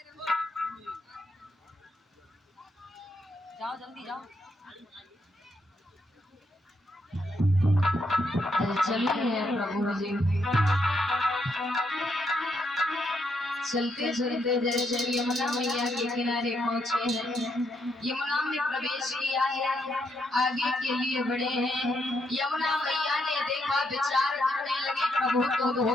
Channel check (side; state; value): both; normal; correlation 0.77